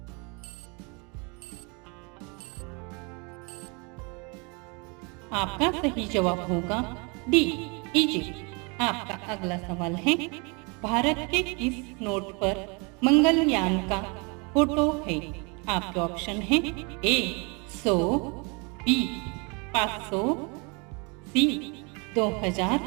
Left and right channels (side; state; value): left; quieter; 31.1 dB